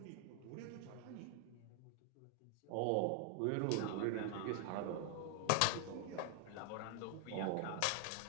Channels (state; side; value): different; both; correlation 0.00